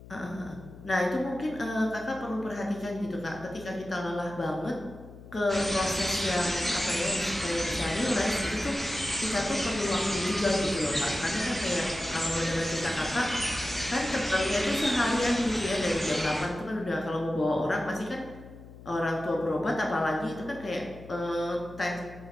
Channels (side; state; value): left; noise; hum, 17 dB below the sound